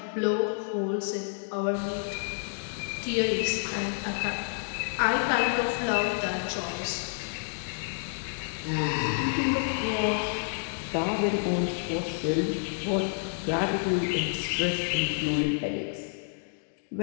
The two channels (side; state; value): right; silent; digital silence